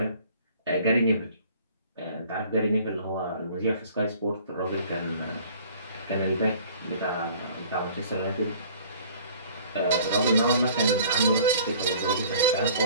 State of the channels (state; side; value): inverted; both; correlation -0.51